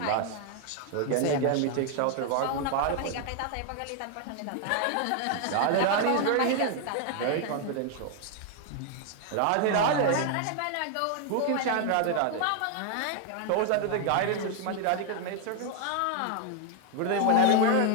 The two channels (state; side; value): different; both; correlation 0.00